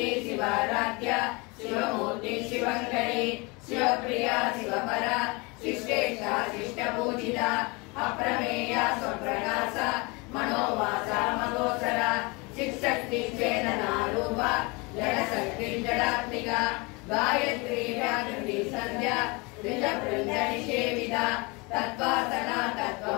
शिवाराध्या शिवमूर्ति शिवङ्करी शिवप्रिया शिवपरा शिष्टेष्टा शिष्टपूजिता अप्रमेया स्वप्रकाशा मनोवाचा मगोचरा शिक्षक्ति चेतना रूपा जडशक्ति जडात्मिका गायत्री व्याकृति संध्या द्विजवृन्दनिषेविता तत्त्वासना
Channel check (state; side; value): quieter; right; 27.6 dB